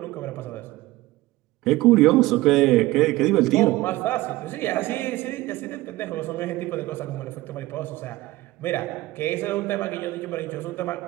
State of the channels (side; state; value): left; quieter; 18.5 dB